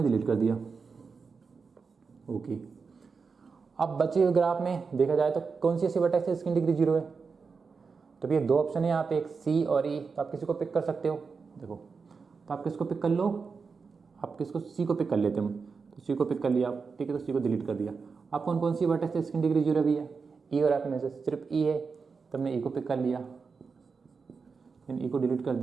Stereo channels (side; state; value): left; quieter; 5.1 dB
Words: डिलीट कर दिया, ओके। अब बचे हुए ग्राफ में देखा जाए तो कौन सी ऐसी वर्टेक्स है जिसकी डिग्री 0 है। तो भैया 2 ऑप्शन है यहाँ पे, एक सी और ई। तो आप किसी को पिक कर सकते हो, देखो। तो आप किसको पिक कर लो, आप किसको, सी को पिक कर लेते हैं। तो सी को पिक कर लिया आप, ठीक है। तो सी को डिलीट कर दिया। अब कौन कौन सी वर्टेक्स है जिसकी डिग्री 0 भी है, ई और एफ में से सिर्फ ई है। तो हमने ई को पिक कर लिया, देन ई को डिलीट कर